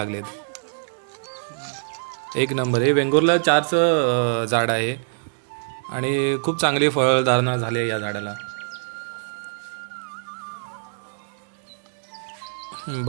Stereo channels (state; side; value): silent; left; 62 dB below the other